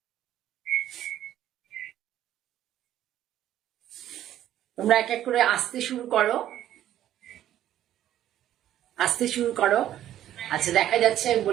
তোমরা এক এক করে আসতে শুরু করো, আসতে শুরু করো। আচ্ছা, দেখা যাচ্ছে,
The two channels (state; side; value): quieter; left; 12.0 dB